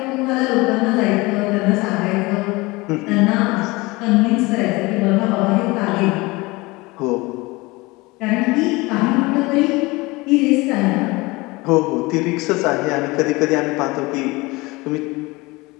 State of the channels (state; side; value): quieter; right; 23.0 dB